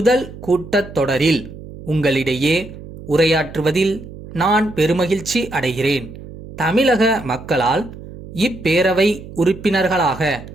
கூட்டத்தொடரில் உங்களிடையே உரையாற்றுவதில் நான் பெருமகிழ்ச்சி அடைகிறேன். தமிழக மக்களால் இப்பேரவை உறுப்பினர்களாக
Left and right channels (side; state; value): right; noise; hum, 15 dB below the sound